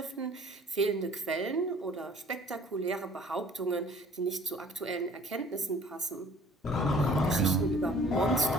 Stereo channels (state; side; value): normal; both; correlation 0.52